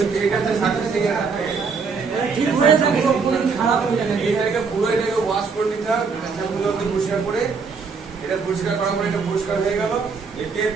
এটাতে সার্ভিসিং ঠিক হয়ে যাবে পুরো খারাপ হয়ে যাবে এটাকে পুরো এটাকে ওয়াশ করে নিতে হবে শ্যাম্পুগুলোকে পরিষ্কার করে এটা পরিষ্কার করার পরে এটা পরিষ্কার হয়ে গেল একে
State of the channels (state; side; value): quieter; left; 5.1 dB